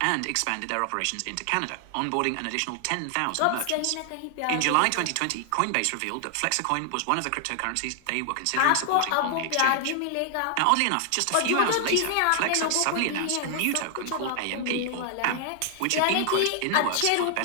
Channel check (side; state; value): both; different; correlation 0.00